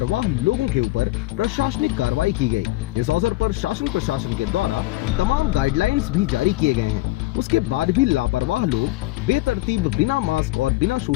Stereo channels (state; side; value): quieter; right; 18.7 dB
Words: लोगों के ऊपर प्रशासनिक कार्रवाई की गई। इस अवसर पर शासन प्रशासन के द्वारा तमाम गाइडलाइंस भी जारी किए गए हैं। उसके बाद भी लापरवाह लोग बेतरतीब बिना मास्क और बिना